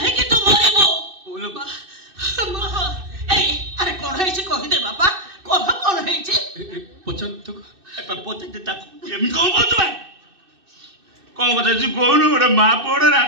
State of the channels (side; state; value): left; late; 2.6 ms